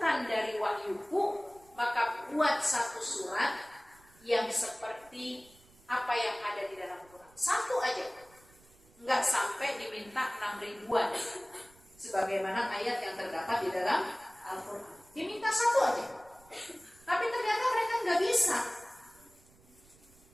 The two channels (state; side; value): noise; right; rumble, 27 dB below the sound